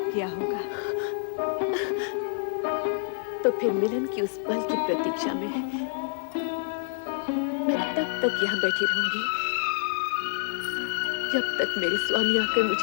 किया होगा। तो फिर मिलन की उस पल की प्रतीक्षा में मैं तब तक यहाँ बैठी रहूंगी जब तक मेरे स्वामी आकर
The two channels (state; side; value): silent; right; digital silence